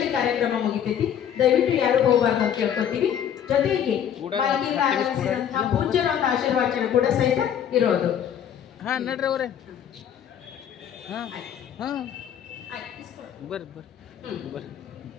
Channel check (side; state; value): right; quieter; 9.2 dB